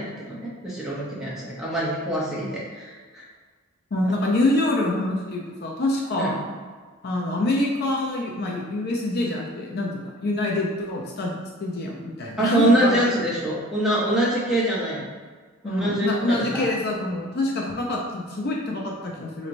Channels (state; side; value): normal; both; correlation 0.49